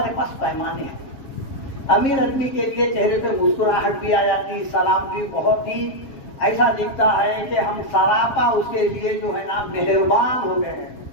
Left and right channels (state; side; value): late; right; 7.4 ms